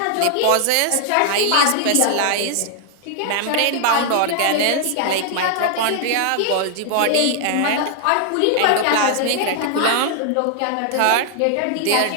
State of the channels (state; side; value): different; both; correlation 0.00